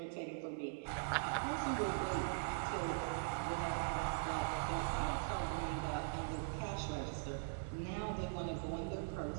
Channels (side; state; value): left; silent; digital silence